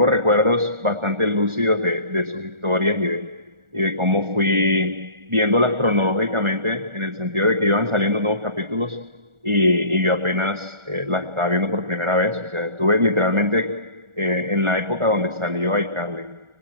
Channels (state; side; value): late; left; 1.4 ms